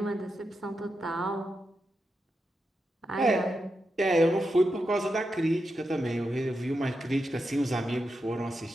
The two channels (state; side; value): normal; both; correlation 0.87